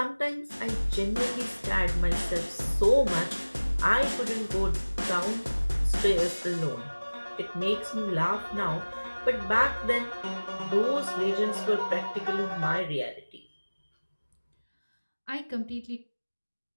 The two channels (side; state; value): both; inverted; correlation -1.00